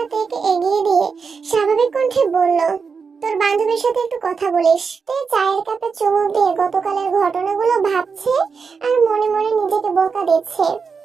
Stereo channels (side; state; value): left; quieter; 5.4 dB